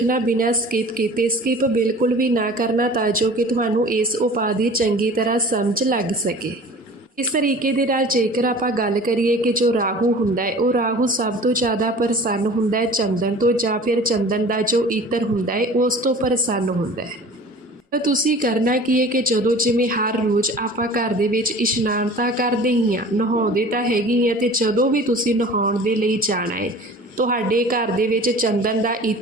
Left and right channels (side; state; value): both; normal; correlation 0.43